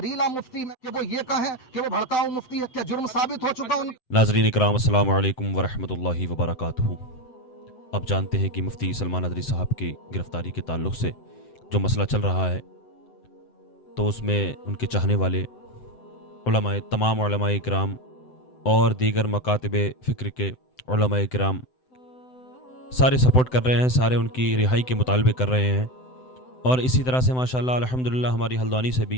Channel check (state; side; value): late; right; 7.9 ms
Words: मुफ्ती में कि वो ये कहें कि वो भड़काऊ मुफ्ती है, क्या जुर्म साबित हो चुका उनका? नाज़रीन इकराम, अस्सलाम वालेकुम वरहमतुल्लाहि वबरकातुहू। अब जानते हैं कि मुफ्ती सलमान नदवी साहब की गिरफ़्तारी के ताल्लुक़ से जो मसला चल रहा है, तो उसमें उनके चाहने वाले उलमाए, तमाम उलमाए इकराम और दीगर मकातिब फ़िक्र के उलमाए इकराम सारे सपोर्ट कर रहे हैं, सारे उनकी रिहाई के मुतालबे कर रहे हैं। और इसी तरह से माशाअल्लाह अल्हम्दुलिल्लाह हमारी हल्द्वानी